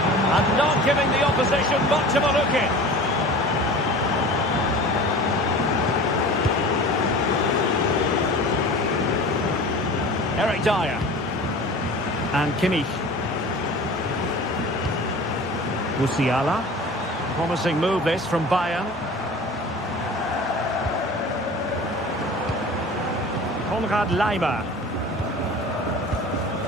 And not giving the opposition much of a look in. Eric Dyer. And Kimmich. Musiala. Promising move this from Bayern. Konrad Leimer.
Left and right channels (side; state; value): both; normal; correlation 0.39